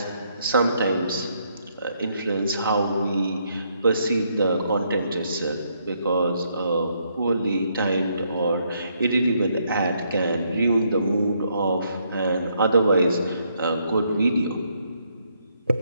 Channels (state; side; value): inverted; both; correlation -0.73